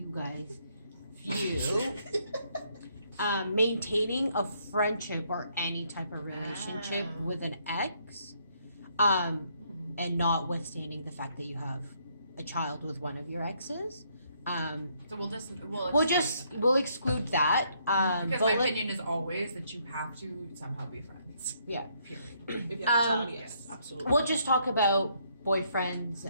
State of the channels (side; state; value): both; inverted; correlation -0.71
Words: guys view maintaining a friendship or any type of relationship with an ex, and notwithstanding the fact that you have a child with one of your exes. So we'll We'll exclude that. because but my let- opinion is always that you have to somehow be friends. Yeah. Period. If you have a child, Um, yes, absolutely. We'll just talk about boyfriends,